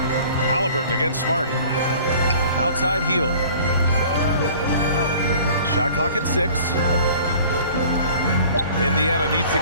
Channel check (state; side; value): inverted; both; correlation -0.48